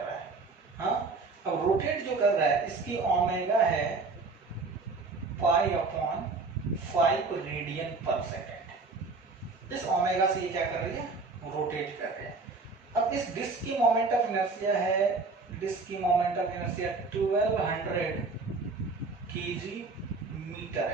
है। हाँ, अब रोटेट जो कर रहा है इसकी ओमेगा है पाई अपॉन 5 रेडियन पर सेकेंड। इस ओमेगा से ये क्या कर रही है, रोटेट कर रही है। अब इस डिस्क की मोमेंट ऑफ इनर्शिया है, डिस्क की moment of inertia 1200 kg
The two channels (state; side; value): quieter; left; 3.9 dB